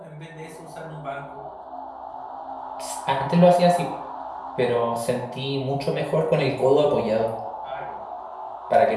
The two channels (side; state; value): both; identical; correlation 1.00